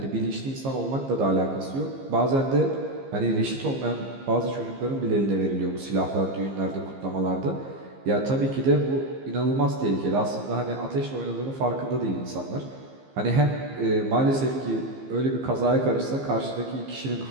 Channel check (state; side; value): late; left; 15 ms